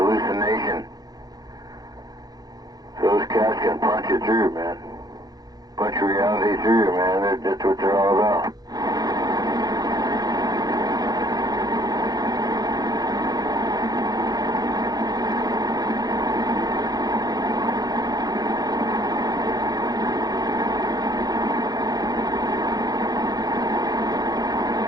Those cats can punch it through, man. Punch reality through, man. That's what they're all about.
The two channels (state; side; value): late; left; 0.19 ms